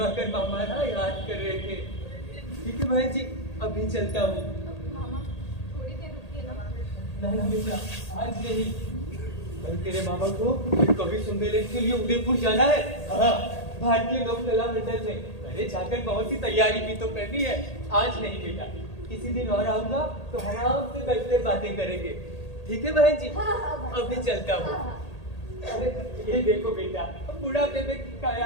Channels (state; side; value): late; right; 1.8 ms